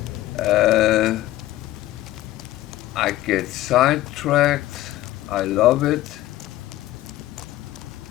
I get sidetracked. I love it.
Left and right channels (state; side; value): quieter; right; 15.6 dB